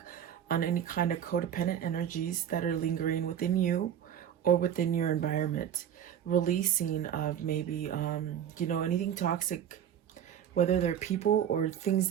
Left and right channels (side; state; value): left; quieter; 9.5 dB